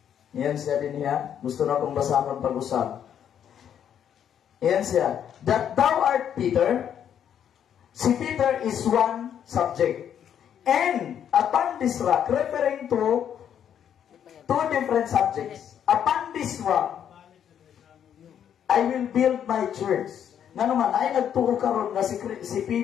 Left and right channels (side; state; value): right; quieter; 9.2 dB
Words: iyan siya din niya, gusto na kong basahon pag-usap. Iyan siya, that thou art Peter, si Peter is one subject. And upon this rock, referring to two different subjects. Upon this rock, I will build my church. Nga naman, ay nagtuo karon nga si